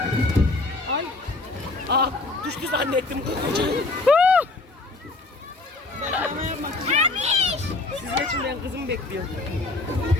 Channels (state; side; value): quieter; right; 3.2 dB